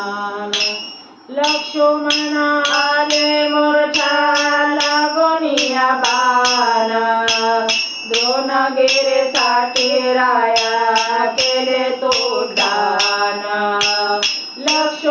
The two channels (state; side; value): identical; both; correlation 1.00